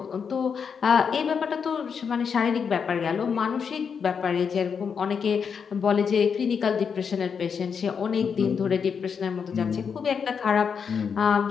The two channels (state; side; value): quieter; right; 6.5 dB